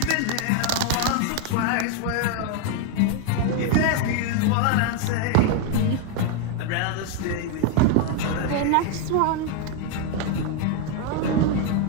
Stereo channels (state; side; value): different; both; correlation 0.01